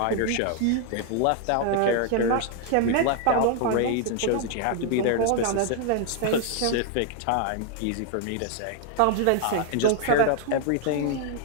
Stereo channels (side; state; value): both; different; correlation 0.00